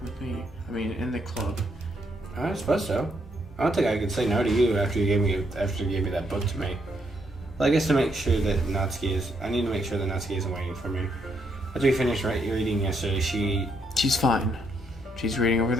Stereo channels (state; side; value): normal; both; correlation 0.75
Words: with me. I mean, in the club. I suppose so. I don't think I could say no to you after you gave me that book to me. Well, I guess to make sure that I need to make sure that Natsuki isn't waiting for me. After we finished reading yesterday, She's fine. She's reading over